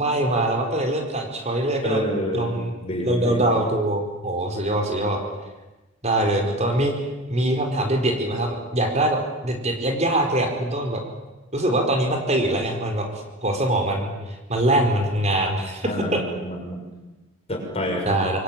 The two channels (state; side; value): normal; both; correlation 0.31